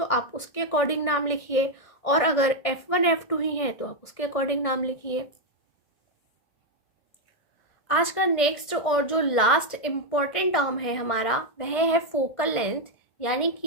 आप उसके अकॉर्डिंग नाम लिखिए, और अगर F1 F2 ही है तो आप उसके अकॉर्डिंग नाम लिखिए। आज का नेक्स्ट और जो लास्ट इम्पॉर्टेंट टर्म है हमारा, वह है फोकल लेंथ, यानी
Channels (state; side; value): late; right; 1.5 ms